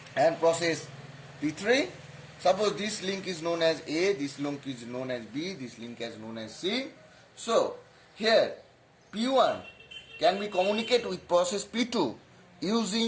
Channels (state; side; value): identical; both; correlation 1.00